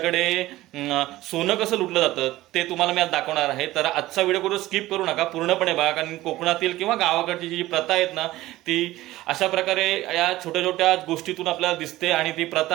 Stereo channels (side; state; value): left; quieter; 16.7 dB